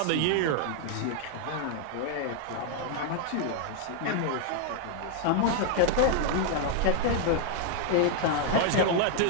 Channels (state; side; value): different; both; correlation 0.00